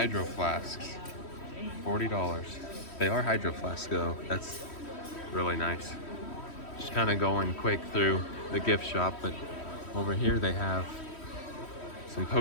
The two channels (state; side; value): late; right; 3.1 ms